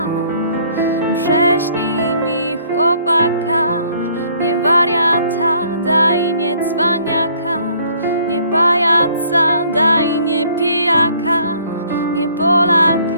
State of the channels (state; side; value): inverted; both; correlation -0.60